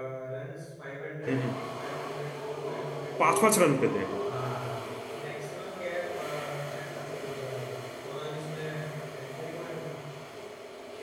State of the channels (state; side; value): identical; both; correlation 1.00